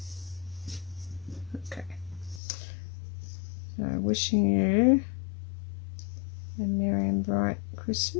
okay, so Wishing You a Merry and Bright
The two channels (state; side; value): drops out; right; at 2.4 s